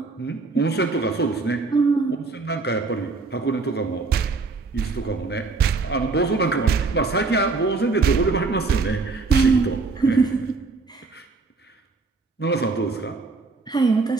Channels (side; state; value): left; quieter; 4.1 dB